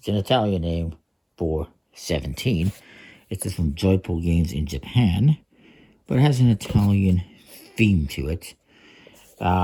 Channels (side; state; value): both; identical; correlation 1.00